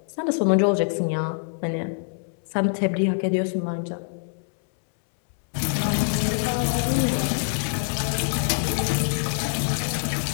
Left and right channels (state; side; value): silent; right; 62 dB below the other